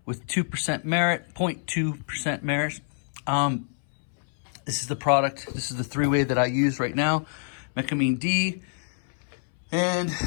with 2% merit, 0.2% merit. This is the product. This is the three-way that I use right now, Mecamine D. And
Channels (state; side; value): silent; right; 61 dB below the other